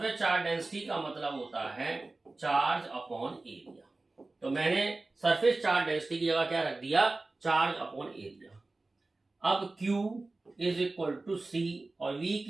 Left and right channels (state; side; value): quieter; left; 3.2 dB